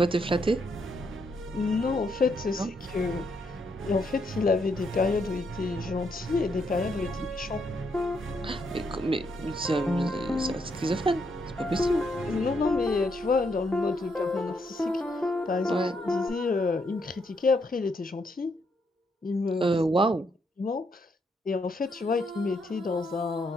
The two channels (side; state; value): both; normal; correlation 0.76